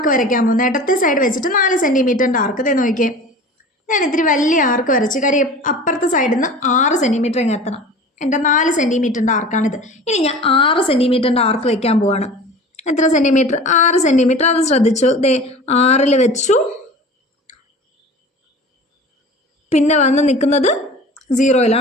വരയ്ക്കാൻ പോകുന്നത്. ഇടത്തെ സൈഡ് വെച്ചിട്ട് 4 സെൻറ്റിമീറ്ററിൻ്റെ ആർക്ക്. ഇതേ നോക്കിയേ, ഞാൻ ഇത്തിരി വലിയ ആർക്ക് വരച്ചു. കാര്യം അപ്പുറത്തെ സൈഡിൽ നിന്ന് 6 സെൻറ്റിമീറ്റർ ഇങ്ങ് എത്തണം. എൻ്റെ 4 സെൻറ്റിമീറ്ററിൻ്റെ ആർക്കാണിത്. ഇനി ഞാൻ 6 സെൻറ്റിമീറ്ററിൻ്റെ ആർക്ക് വയ്ക്കാൻ പോവാണ്. എത്ര സെൻറ്റിമീറ്റർ? 6 സെൻറ്റിമീറ്റർ. അത് ശ്രദ്ധിച്ചു. ദേ 6ൽ വെച്ചു. പിന്നെ വന്ന് നിൽക്കുന്നത്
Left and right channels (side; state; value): both; normal; correlation 0.39